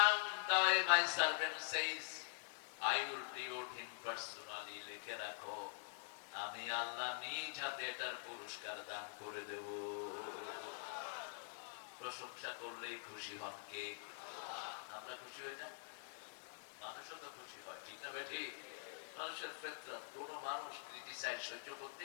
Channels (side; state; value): right; silent; digital silence